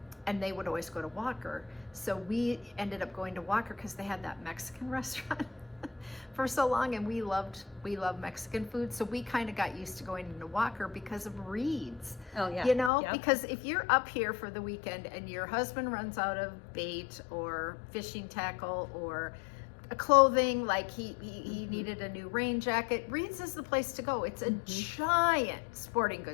they would always go to Walker. So we ended up going to Walker because they had that Mexican restaurant for so long, and we love Mexican food. So we kind of got used to going into Walker because of Reed's. Oh yeah. Because if you're up here for the weekend and your husband runs out of bait or fishing tackle or clothing, like he needed a new rain jacket, Reed's is the place to go. It's a giant sporting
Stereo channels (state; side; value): drops out; right; at 12.9 s